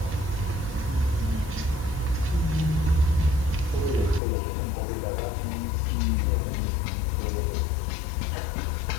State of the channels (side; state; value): right; drops out; at 4.2 s